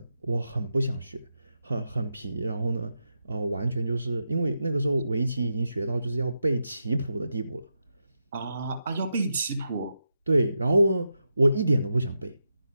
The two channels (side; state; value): both; inverted; correlation -0.87